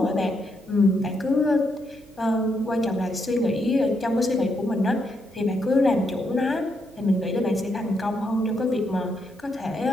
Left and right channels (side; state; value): right; noise; hum, 25 dB below the sound